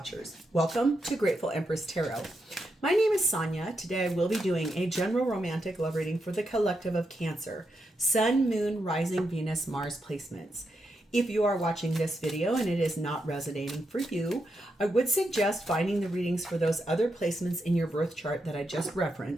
Welcome to Grateful Empress Tarot. My name is Sonia. Today I will be doing a general romantic love reading for the collective of Cancer. Sun, Moon, Rising, Venus, Mars placements. If you are watching this video and it is not resonating for you, I would suggest finding the readings for those other placements in your birth chart that I just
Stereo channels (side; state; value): both; normal; correlation 0.84